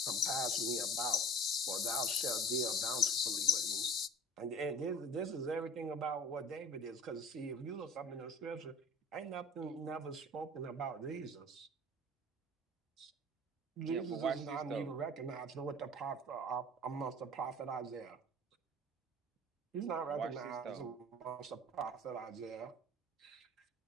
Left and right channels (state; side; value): normal; both; correlation 0.42